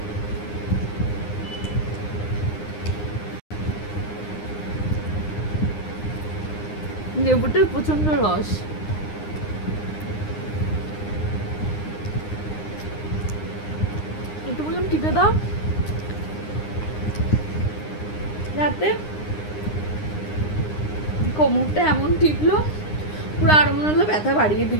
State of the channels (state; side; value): late; right; 9.8 ms